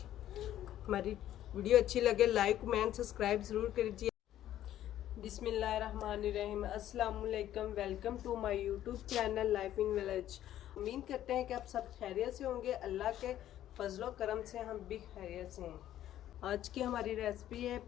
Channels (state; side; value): quieter; right; 12.3 dB